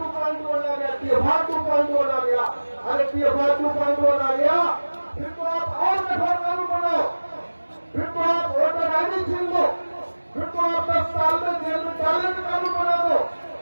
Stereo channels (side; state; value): both; inverted; correlation -1.00